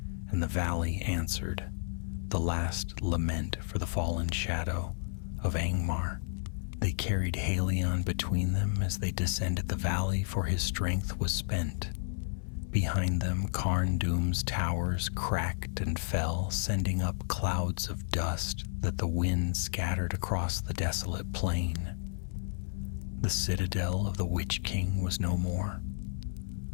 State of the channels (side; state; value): right; silent; 56 dB below the other